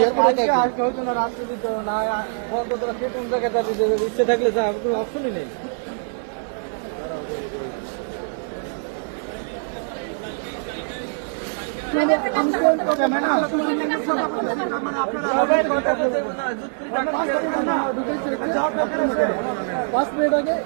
আজকে হতো না রাত্রে দিত না কোন জায়গায় যাবে উঠতে থাকলে কোনো অপশনই নেই। পাঁচ মিনিট আগে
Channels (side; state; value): left; silent; 63 dB below the other